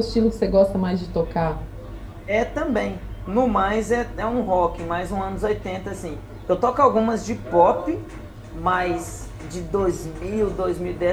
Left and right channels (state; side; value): identical; both; correlation 1.00